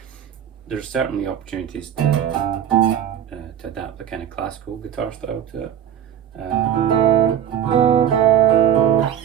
There's certainly opportunities to adapt the kind of classical guitar style to it.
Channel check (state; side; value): quieter; left; 9.7 dB